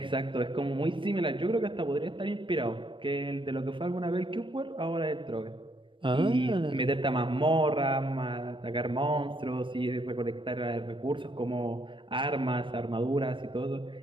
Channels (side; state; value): left; late; 0.24 ms